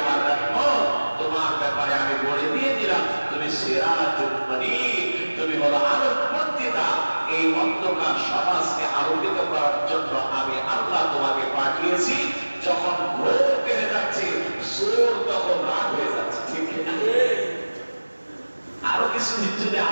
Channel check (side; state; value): both; inverted; correlation -1.00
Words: রহমত। তোমার ব্যাপারে আমি বলে দিয়ে দিলাম তুমি সিরাজুল মুনীর, তুমি হলো আলোকবর্তিতা। এই অন্ধকার সমাজকে আলোকিত করার জন্য আমি আল্লাহ তোমাকে পাঠিয়েছি। যখন ঘোর কেড়ে যাচ্ছে, চোর তখন রাগ হয়ে যাচ্ছে। ঠিক না? আরো কিছুদিন যদি